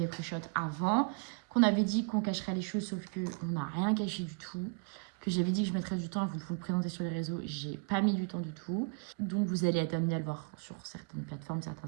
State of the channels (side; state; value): left; quieter; 37.3 dB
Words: pré-shot avant, qu'on avait dit qu'on cacherait les choses, sauf qu'on n'a rien caché du tout. Que j'avais dit que je mettrais du temps à vous présenter sur les réseaux, j'ai pas mis du temps du tout. Donc vous allez être amené à le voir sur certaines plateformes, certains